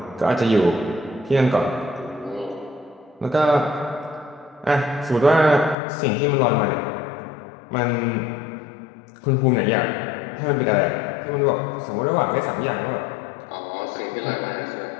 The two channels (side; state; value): right; drops out; at 5.8 s